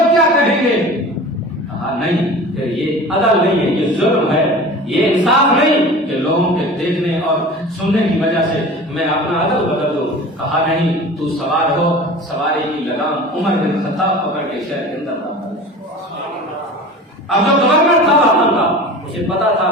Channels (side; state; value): both; normal; correlation 0.38